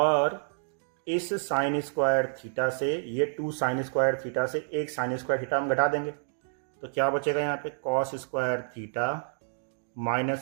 इस साइन स्क्वायर थीटा से ये 2 साइन स्क्वायर थीटा से एक साइन स्क्वायर थीटा हम घटा देंगे, तो क्या बचेगा यहाँ पे cos square theta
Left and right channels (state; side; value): silent; left; digital silence